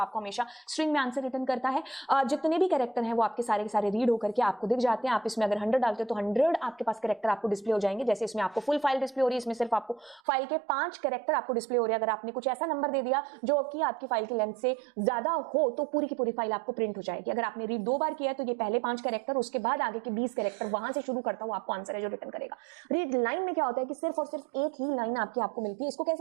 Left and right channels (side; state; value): left; drops out; at 10.2 s